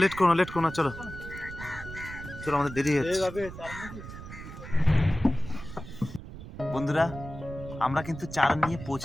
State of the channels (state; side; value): noise; right; rumble, 12 dB below the sound